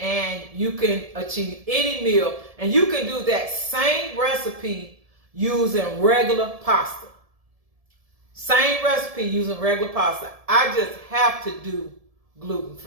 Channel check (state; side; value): late; left; 1.7 ms